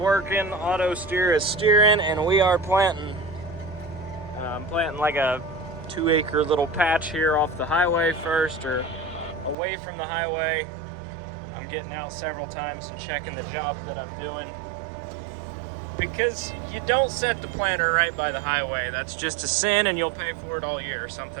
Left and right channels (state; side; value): drops out; left; at 9.6 s